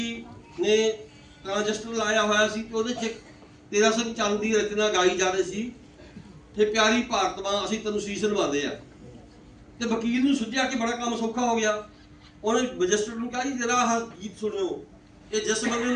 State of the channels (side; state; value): both; identical; correlation 1.00